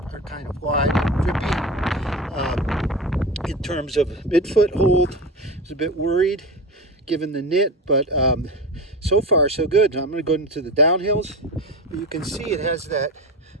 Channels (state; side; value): normal; both; correlation 0.25